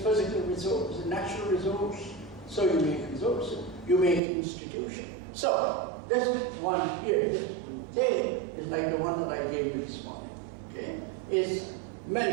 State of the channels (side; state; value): left; drops out; at 4.2 s